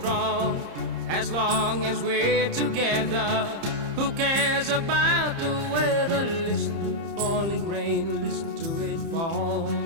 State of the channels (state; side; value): late; left; 30 ms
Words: As long as we're together, who cares about the weather? Listen to the falling rain, listen to it fall.